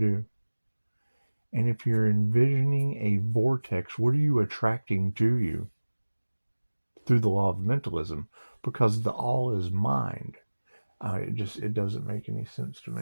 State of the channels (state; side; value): inverted; both; correlation -1.00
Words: And if you're envisioning a vortex, what are you attracting to you? Through the law of mentalism, because the all is mind. It doesn't make any sense to